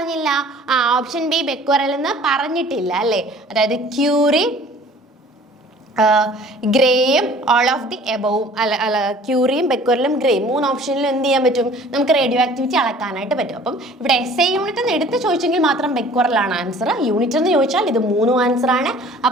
ഓപ്ഷൻ ബി ബെക്വറൽ എന്ന് പറഞ്ഞിട്ടില്ല അല്ലേ. അതായത് ക്യൂറി, ഗ്രേയും ഓൾ ഓഫ് ദി എബോവും അല്ല ക്യൂറിയും ബെക്വറലും ഗ്രേയും 3 ഓപ്ഷനിലും എന്ത് ചെയ്യാൻ പറ്റും, നമുക്ക് റേഡിയോ ആക്ടിവിറ്റി അളക്കാനായിട്ട് പറ്റും. അപ്പം ഇവിടെ SI യൂണിറ്റ് എന്ന് എടുത്ത് ചോദിച്ചെങ്കിൽ മാത്രം ബെക്വറലാണ് ആൻസർ. യൂണിറ്റ് എന്ന് ചോദിച്ചാൽ ഇത് 3 ആൻസർ ആണ്.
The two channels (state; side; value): normal; both; correlation 0.50